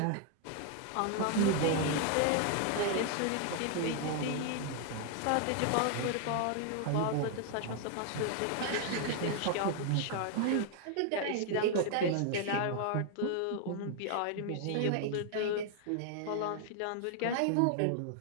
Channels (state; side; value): different; both; correlation 0.00